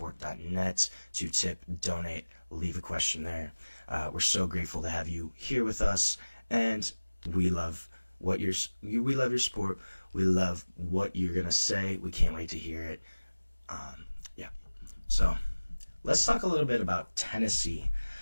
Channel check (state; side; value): inverted; both; correlation -1.00